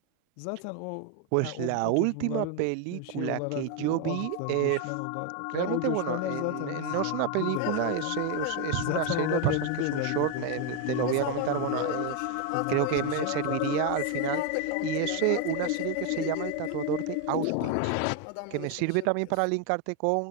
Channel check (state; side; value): different; both; correlation 0.01